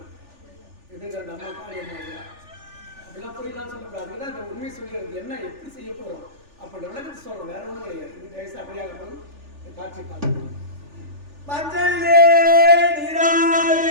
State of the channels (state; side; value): late; left; 3.4 ms